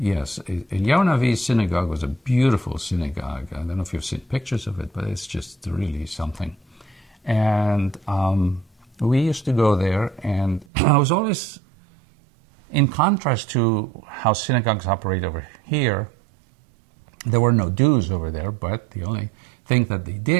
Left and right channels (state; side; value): drops out; left; at 10.7 s